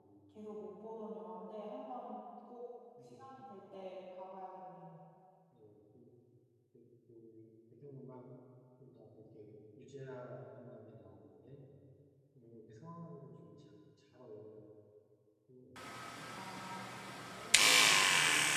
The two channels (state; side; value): identical; both; correlation 1.00